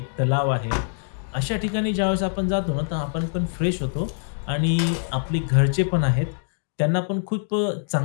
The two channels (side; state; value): right; silent; digital silence